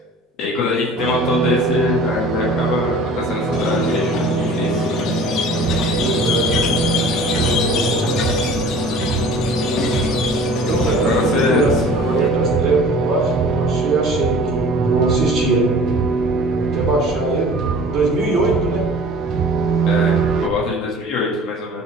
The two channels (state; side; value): normal; both; correlation 0.45